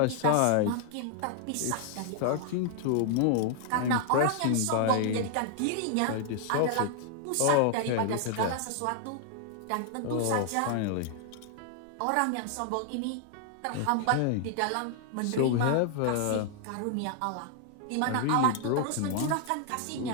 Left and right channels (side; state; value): both; different; correlation 0.00